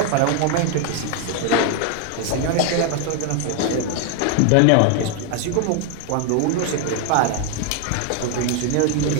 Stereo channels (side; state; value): both; different; correlation 0.00